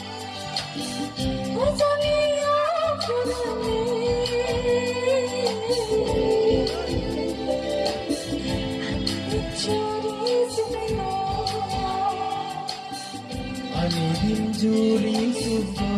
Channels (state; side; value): identical; both; correlation 1.00